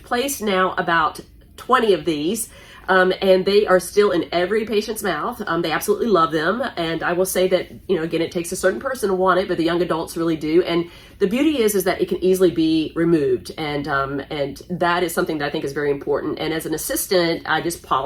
placed now about 20 of these, and they are still in every patient's mouth. They absolutely love them. And I will say that, again, it takes a certain person to want it, but the young adults really do. And the beauty is that it can easily be removed. And that is something that I think is very important. And as an assistant, I just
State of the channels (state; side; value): identical; both; correlation 1.00